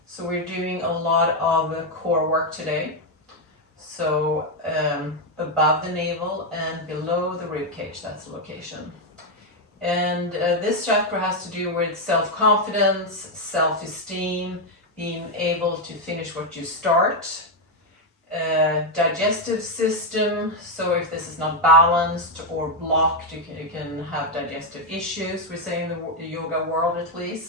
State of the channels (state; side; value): normal; both; correlation 0.03